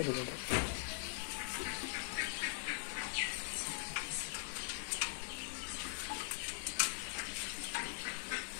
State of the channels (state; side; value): silent; right; digital silence